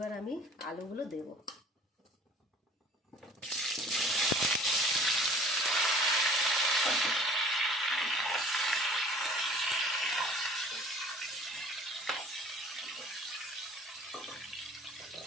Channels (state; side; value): normal; both; correlation 0.48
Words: আমি আলুগুলো দেব।